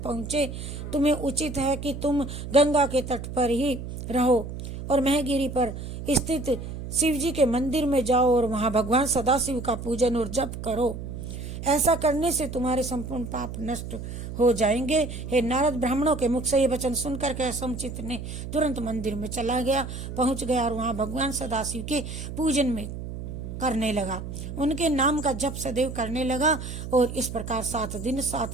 तुम्हें उचित है कि तुम गंगा के तट पर ही रहो और महगिरी पर स्थित शिव जी के मंदिर में जाओ और वहाँ भगवान सदाशिव का पूजन और जप करो। ऐसा करने से तुम्हारे संपूर्ण पाप नष्ट हो जाएंगे। हे नारद, ब्राह्मणों के मुख से ये वचन सुनकर के असमचित ने तुरंत मंदिर में चला गया, पहुंच गया और वहां भगवान सदाशिव के पूजन में करने लगा, उनके नाम का जप सदैव करने लगा। और इस प्रकार 7 दिन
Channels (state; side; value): noise; right; hum, 8 dB below the sound